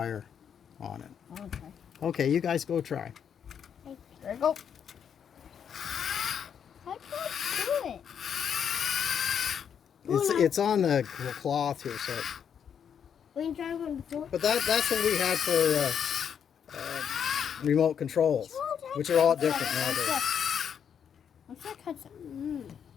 on it. Okay. Okay, you guys go try. There you go. How do I do it? It's on the cloth here, so. We can try one before. But that's what we had for remote controls, which are all different nowadays. Looks like Hudson.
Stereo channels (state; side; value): quieter; right; 8.0 dB